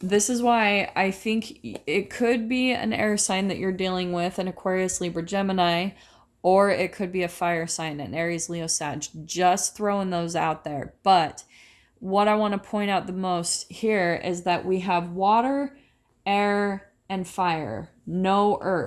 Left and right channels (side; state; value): both; identical; correlation 1.00